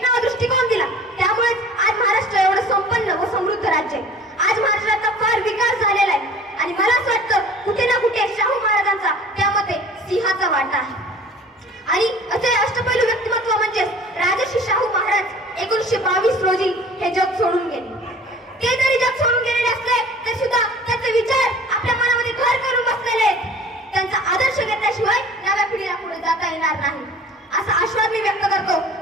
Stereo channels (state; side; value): normal; both; correlation 0.46